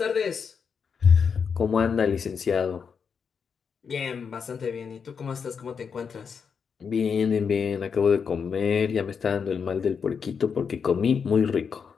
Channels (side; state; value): right; quieter; 6.3 dB